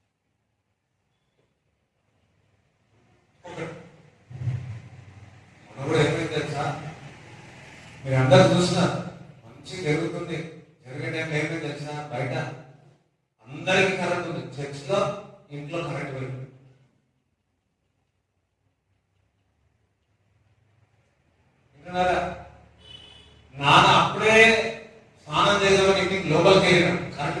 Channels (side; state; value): both; identical; correlation 1.00